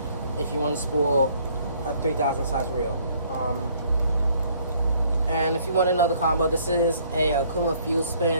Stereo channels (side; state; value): both; inverted; correlation -0.62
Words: if you want to spool a 3000 size reel. And if you want to know the combo, this is a Okuma fuel